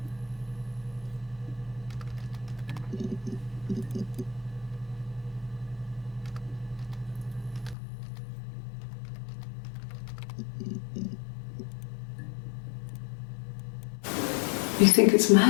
You think it's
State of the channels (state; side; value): drops out; right; at 7.8 s